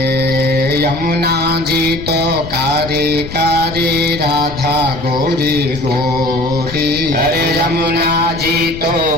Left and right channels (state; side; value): noise; left; rumble, 12 dB below the sound